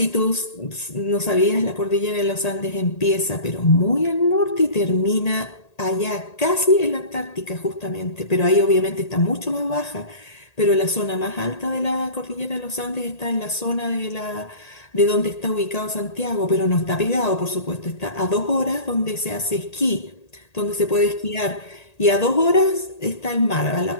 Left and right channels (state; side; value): late; right; 1.8 ms